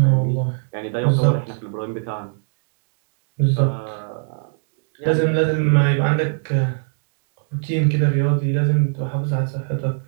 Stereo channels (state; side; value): silent; left; digital silence